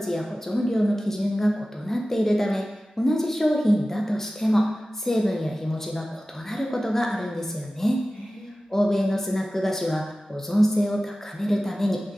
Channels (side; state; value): both; normal; correlation 0.96